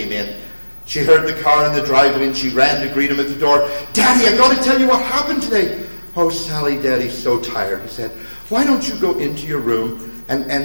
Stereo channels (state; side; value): inverted; both; correlation -1.00